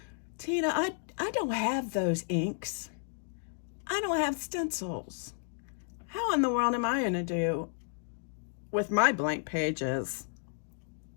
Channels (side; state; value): right; silent; digital silence